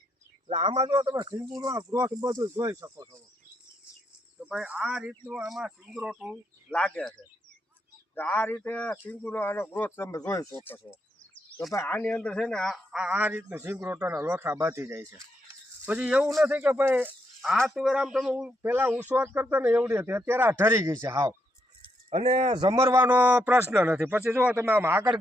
એટલે આમાં જો તમે સિંગુનો ગ્રોથ બધું જોઈ શકો છો. તો ભાઈ આ રીતનું આમાં સિંગરોટું લાગે છે. તો આ રીતે સિંગુનો આનો ગ્રોથ તમે જોઈ શકો છો. તો ભાઈ આની અંદર છે ને આ રીતનું સિંગરોટાના લોથા બાંધી જાય છે. પછી એવું નથી કે ભાઈ આ તુવેર આમ તમે પહેલાં ઉસવાટ કરતા ને એવડી હતી, અત્યારે આ ઠરી ગઈ છે હાવ, અને જમરવાનો પ્રશ્ન નથી. પછી જો તમે આમ આગળ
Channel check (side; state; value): both; normal; correlation 0.78